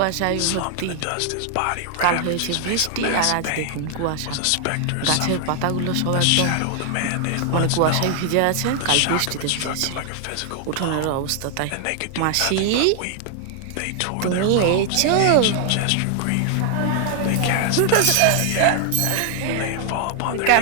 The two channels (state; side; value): different; both; correlation 0.00